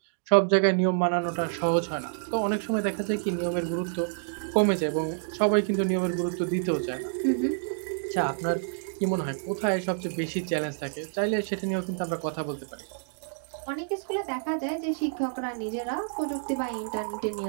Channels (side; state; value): left; silent; digital silence